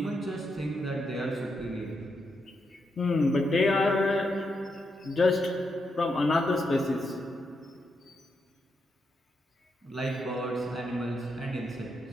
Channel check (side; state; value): both; normal; correlation 0.82